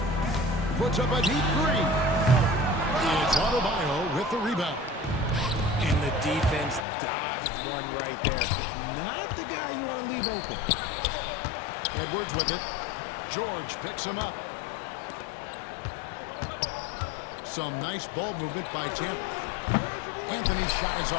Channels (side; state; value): right; drops out; at 6.9 s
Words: Puts up a deep three. It's Adebayo with the rebound. And the defense dodged one right there. Not the guy you want to leave open. Edwards with it. George picks him up. Some nice ball movement by Tampa. Anthony's shot is